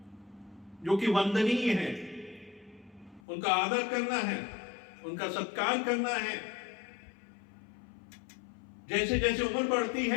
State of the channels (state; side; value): drops out; right; at 3.2 s